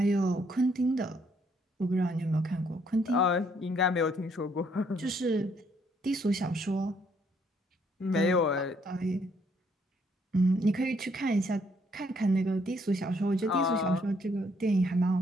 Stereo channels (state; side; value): normal; both; correlation 0.69